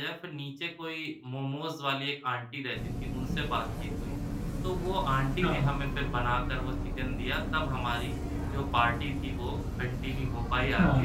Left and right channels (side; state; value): both; identical; correlation 1.00